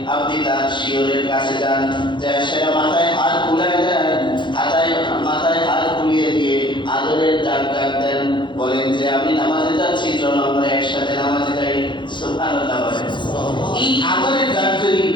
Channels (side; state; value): right; late; 0.23 ms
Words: আপনি তার শিয়রের কাছে যান, যা সেটা মাথায় হাত বুলায় দেন, মাথায় হাত বুলিয়ে দিয়ে আদরের ডাক দেন, বলেন যে আমি নামাজে যাচ্ছি, চলো আমরা একসাথে নামাজে যাই। সুবহানাল্লাহ। এই আদরের ডাক যদি